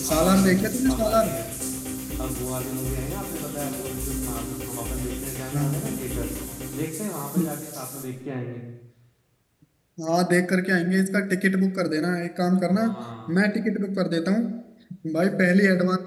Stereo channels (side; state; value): both; identical; correlation 1.00